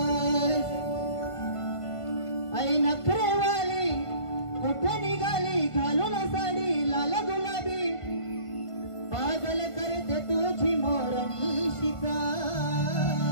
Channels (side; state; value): right; late; 1.5 ms